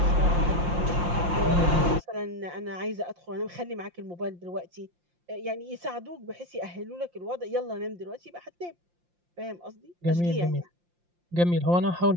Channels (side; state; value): left; late; 5.7 ms